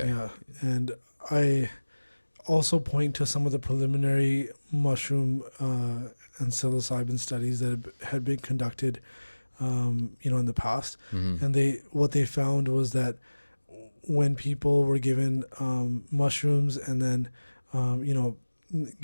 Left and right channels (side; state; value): both; inverted; correlation -1.00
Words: Yeah. And I also point to some of the preliminary mushroom and psilocybin studies that had been conducted in the past. Mm-hmm. And what they found was that when people were given mushrooms and then